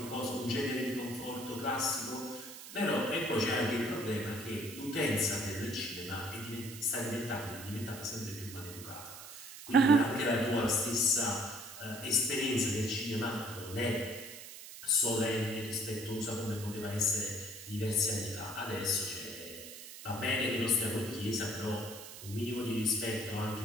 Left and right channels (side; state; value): right; noise; hiss, 13 dB below the sound